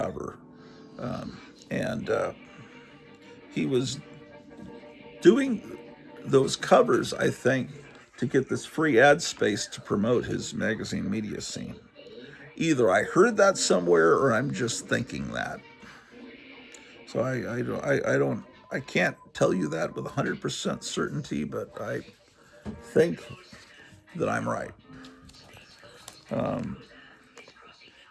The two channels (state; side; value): identical; both; correlation 1.00